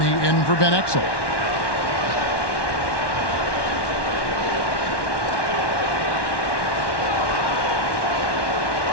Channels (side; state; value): right; late; 1.1 ms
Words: in for Ben Exel.